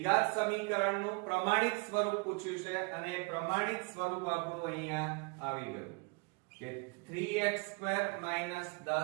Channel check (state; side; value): quieter; left; 31.4 dB